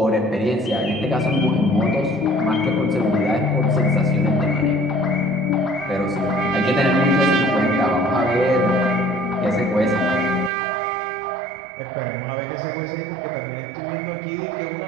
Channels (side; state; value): left; drops out; at 10.5 s